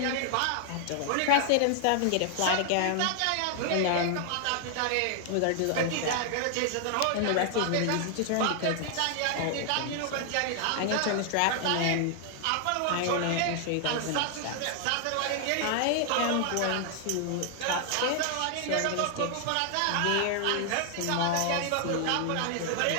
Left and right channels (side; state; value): both; different; correlation 0.00